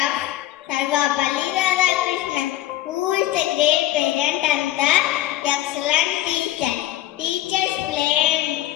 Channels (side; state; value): right; quieter; 14.7 dB